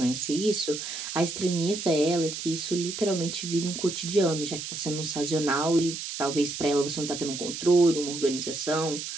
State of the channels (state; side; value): noise; right; hiss, 7 dB below the sound